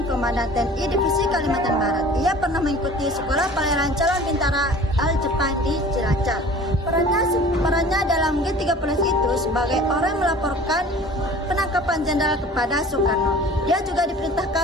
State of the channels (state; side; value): normal; both; correlation 0.45